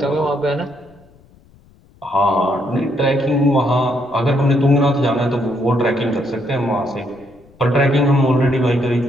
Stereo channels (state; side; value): noise; left; rumble, 29 dB below the sound